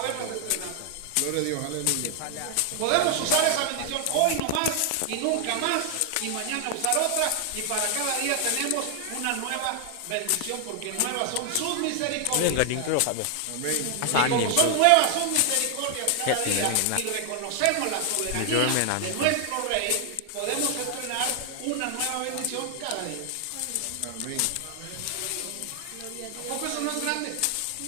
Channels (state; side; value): different; both; correlation 0.00